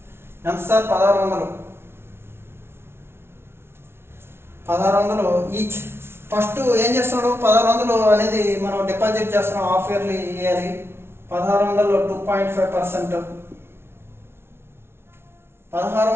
ఎంత సార్? 1600 ఈచ్. ఫస్ట్ ఏం చేస్తున్నాడు? 1600 అనేది మనం డిపాజిట్ చేస్తున్నాం, హాఫ్ ఇయర్లీ ఇవ్వాలి. 1600 2.5%.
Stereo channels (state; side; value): late; left; 0.12 ms